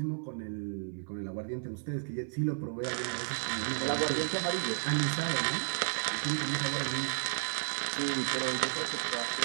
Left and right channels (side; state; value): left; silent; 56 dB below the other